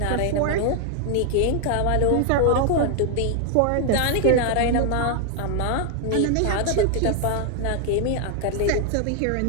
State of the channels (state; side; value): different; both; correlation 0.00